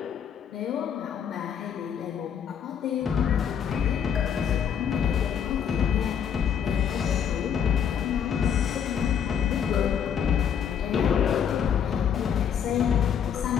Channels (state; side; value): quieter; right; 8.1 dB